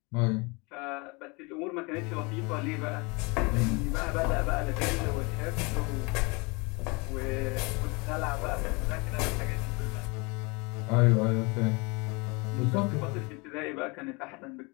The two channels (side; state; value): right; quieter; 28.4 dB